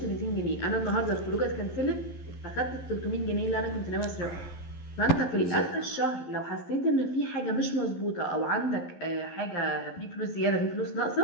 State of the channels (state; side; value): late; right; 11 ms